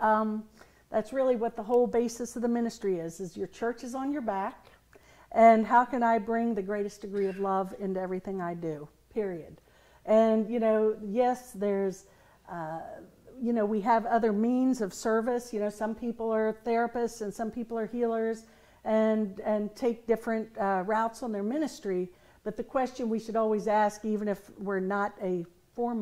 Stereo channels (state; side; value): identical; both; correlation 1.00